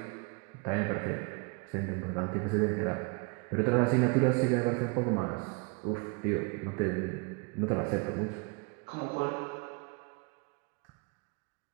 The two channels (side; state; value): left; quieter; 32.2 dB